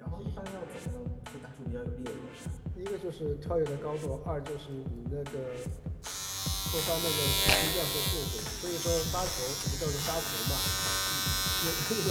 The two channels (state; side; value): identical; both; correlation 1.00